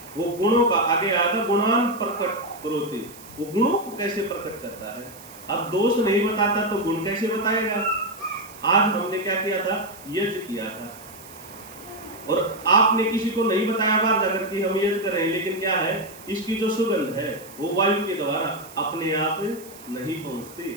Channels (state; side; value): noise; right; hiss, 19 dB below the sound